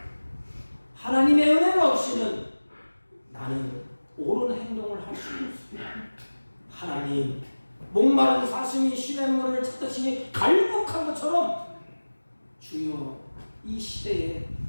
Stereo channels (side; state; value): both; inverted; correlation -1.00